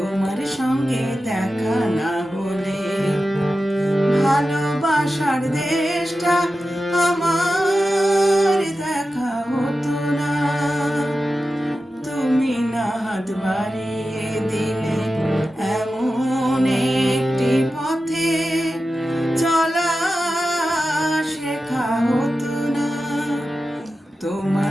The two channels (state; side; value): normal; both; correlation 0.92